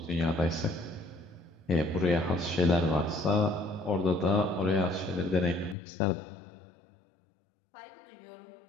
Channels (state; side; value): drops out; right; at 5.8 s